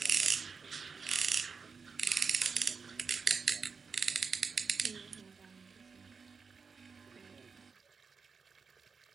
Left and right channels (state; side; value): quieter; left; 5.2 dB